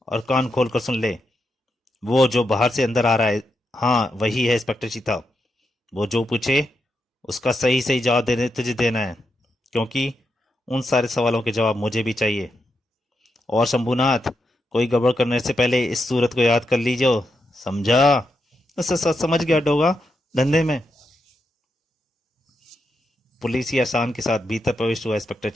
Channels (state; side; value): normal; both; correlation 0.85